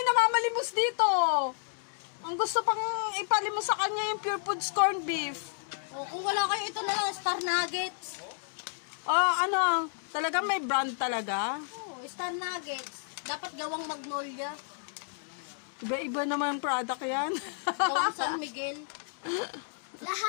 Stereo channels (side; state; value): right; silent; digital silence